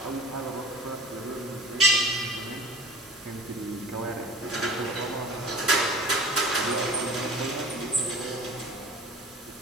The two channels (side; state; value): both; normal; correlation 0.41